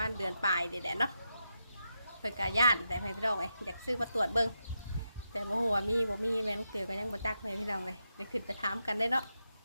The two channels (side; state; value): both; inverted; correlation -0.86